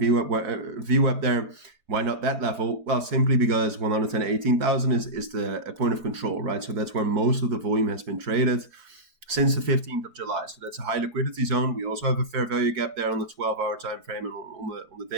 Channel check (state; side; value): late; left; 4.7 ms